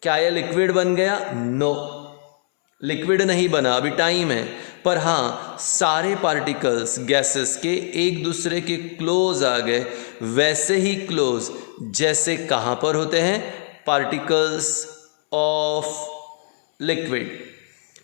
क्या यह लिक्विड बन गया? नो, लिक्विड नहीं बना, अभी टाइम है। पर हाँ, सारे पार्टिकल्स गैसेस के एक दूसरे के क्लोज आ गए, वैसे ही क्लोज जैसे कहाँ पर होते हैं, particles of liquid.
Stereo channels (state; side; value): silent; right; 64 dB below the other